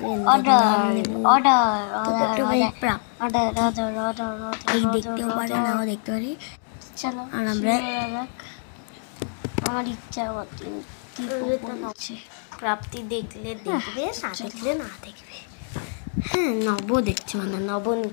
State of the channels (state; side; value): silent; right; 62 dB below the other